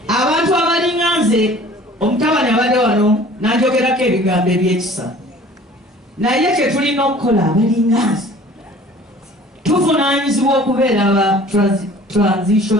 Abantu abalinga nze omutabani abadde wano n'anjogerako ebigambo ebyekisa, naye kye tulina okukola abalinga nze tuvunaanyizibwa okubeera aba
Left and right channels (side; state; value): both; normal; correlation 0.49